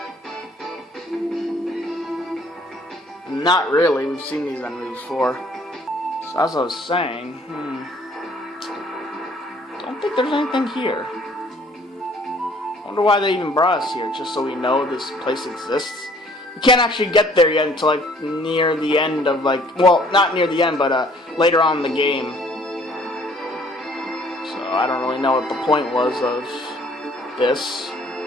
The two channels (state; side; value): normal; both; correlation 0.58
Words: Not really. We've seen these enemies before. So as I was saying, don't think there's anything here. I wonder why they even brought us here, just so we know this place exists. We can't actually get there yet until like near the end of well, not near the end, but later on in the game. So I don't really know what the point was of this.